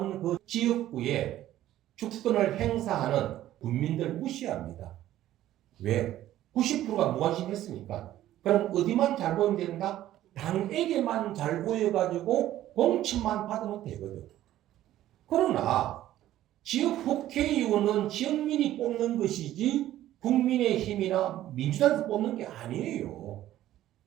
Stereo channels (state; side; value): quieter; left; 13.5 dB